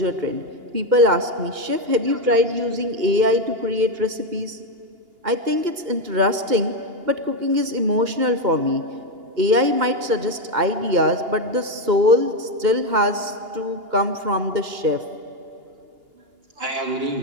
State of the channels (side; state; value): left; late; 2.8 ms